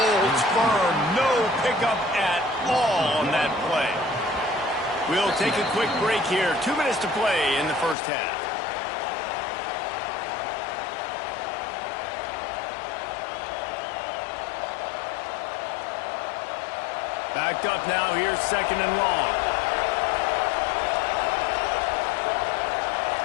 firm. No pickup at all on that play. We'll take a quick break here. 2 minutes to play in the first half. Backed up now. Here's second and long.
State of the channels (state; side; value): drops out; right; at 8.0 s